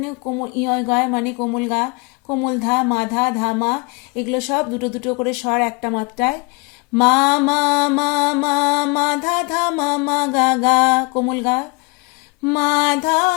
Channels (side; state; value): right; quieter; 28.4 dB